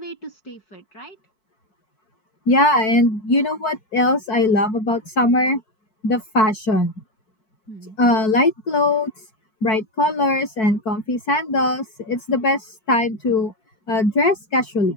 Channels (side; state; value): right; late; 4.6 ms